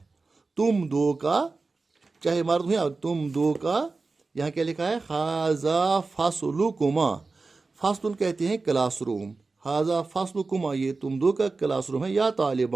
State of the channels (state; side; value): quieter; left; 3.9 dB